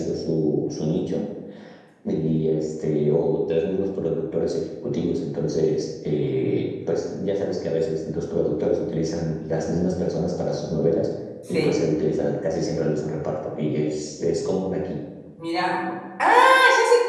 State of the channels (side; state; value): both; identical; correlation 1.00